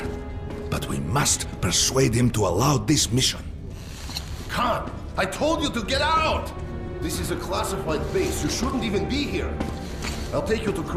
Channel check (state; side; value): identical; both; correlation 1.00